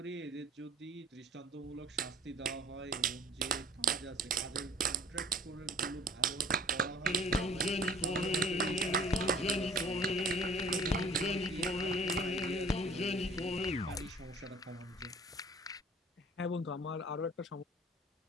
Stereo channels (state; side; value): normal; both; correlation 0.49